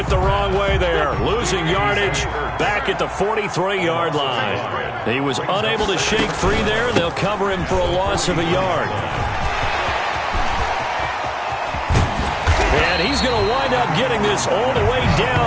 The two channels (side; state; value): both; identical; correlation 1.00